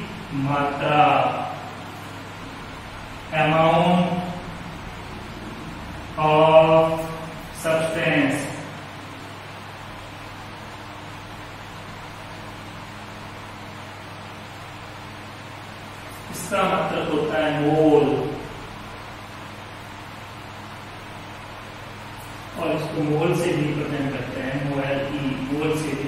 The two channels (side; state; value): both; identical; correlation 1.00